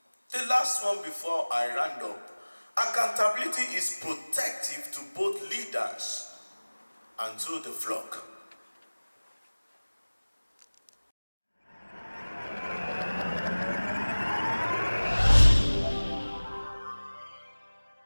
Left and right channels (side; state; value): both; inverted; correlation -1.00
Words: The last one before I round up. Accountability is protective to both leaders and to the flock.